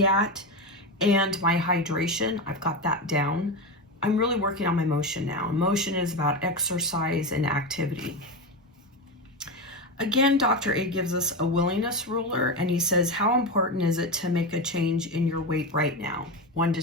at, and my hydration, I've got that down. I'm really working on my motion now. Motion is about exercise and activity. Again, Dr. A gives us a willingness ruler, and he says, how important is it to make a change in your weight right now? 1 to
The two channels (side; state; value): both; normal; correlation 0.17